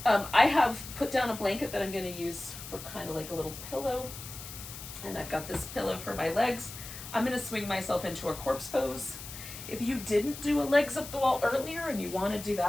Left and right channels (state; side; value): noise; left; hiss, 12 dB below the sound